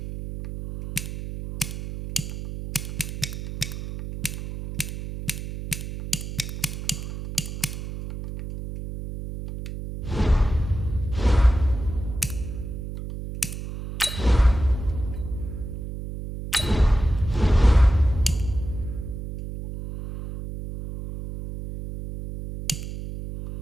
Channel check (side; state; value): right; noise; hum, 8 dB below the sound